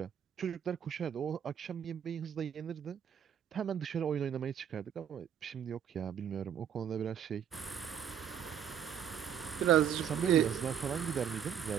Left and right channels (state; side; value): quieter; left; 8.7 dB